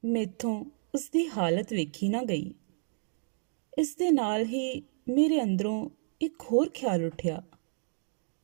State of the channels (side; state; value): left; silent; digital silence